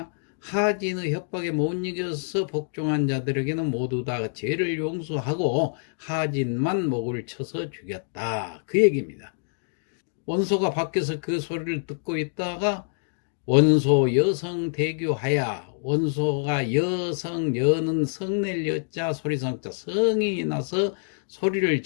하진의 협박에 못 이겨서 복종한 자들에게는 모두 다 죄를 용서하고 하진만 목을 쳐서 죽였다, 그 얘기입니다. 원소가 밖에서 그 소리를 듣고 있다가 원소 여성 대교하야. 원소가 여성, 여는 성낼 여자, 소리성자, 성이 나서 소리를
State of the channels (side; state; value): right; silent; digital silence